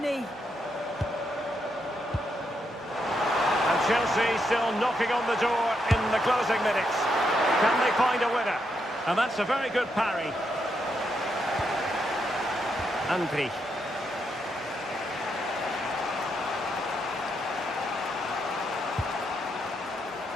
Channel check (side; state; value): both; normal; correlation 0.80